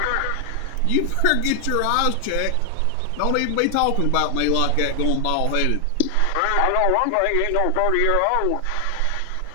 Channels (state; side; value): different; both; correlation 0.00